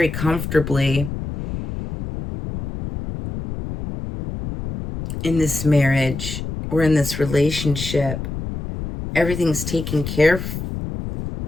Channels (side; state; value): left; noise; rumble, 7 dB below the sound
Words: comfortably in this marriage or in this relationship, everything's taken care of.